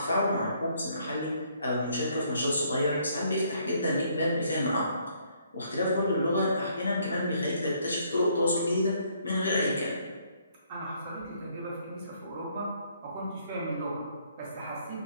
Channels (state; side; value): inverted; both; correlation -0.67